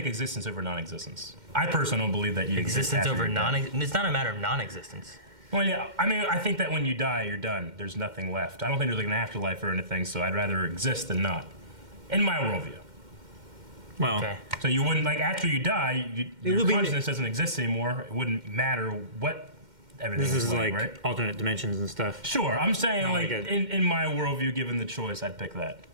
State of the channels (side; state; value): left; late; 2.1 ms